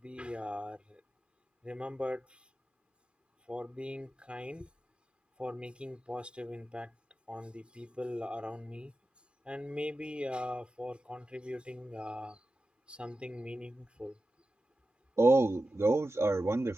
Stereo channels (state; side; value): normal; both; correlation 0.93